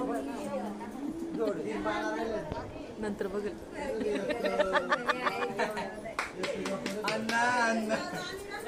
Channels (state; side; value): identical; both; correlation 1.00